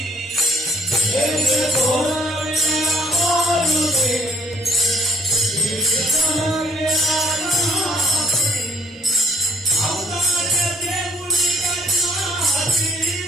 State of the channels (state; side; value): normal; both; correlation 0.62